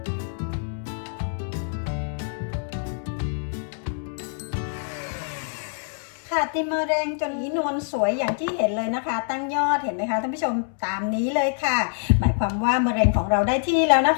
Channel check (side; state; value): right; silent; 62 dB below the other